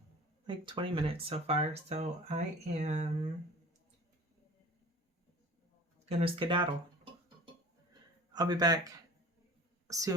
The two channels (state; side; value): normal; both; correlation 0.42